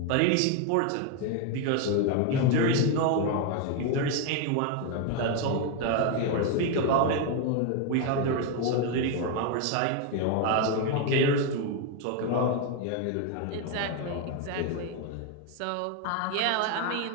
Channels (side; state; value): both; different; correlation 0.01